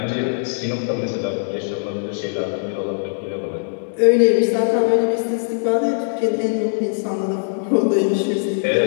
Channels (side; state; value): right; silent; digital silence